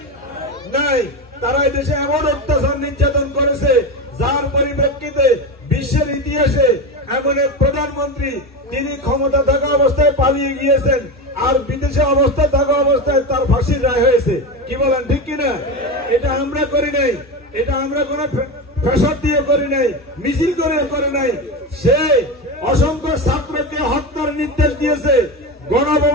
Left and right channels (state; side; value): normal; both; correlation 0.19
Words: নাই। তারা এই দেশে এমন অত্যাচার নির্যাতন করেছে যার পরিপ্রেক্ষিতে বিশ্বের ইতিহাসে এমন এক প্রধানমন্ত্রী তিনি ক্ষমতা থাকা অবস্থায় পালিয়ে গিয়েছেন আর বিদেশে অবস্থা থাকা অবস্থায় তার ফাঁসির রায় হয়েছে। কি বলেন, ঠিক কিনা? এটা আমরা করি নাই, এটা আমরা কোন প্রেসার দিয়ে করি নাই, মিছিল করে নাই। সে অসংখ্য ছাত্রকে হত্যার নির্দেশ দিয়েছে,